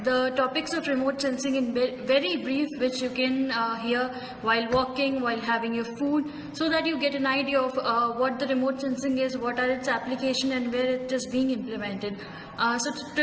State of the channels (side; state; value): both; identical; correlation 1.00